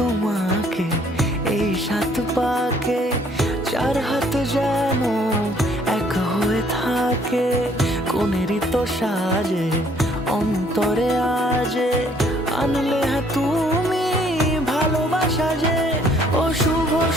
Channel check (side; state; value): both; normal; correlation 0.63